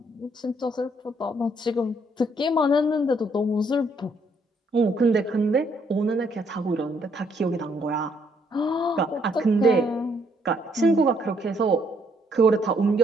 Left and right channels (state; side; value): normal; both; correlation 0.70